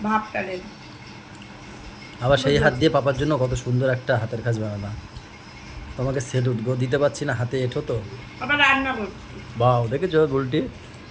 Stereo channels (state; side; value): identical; both; correlation 1.00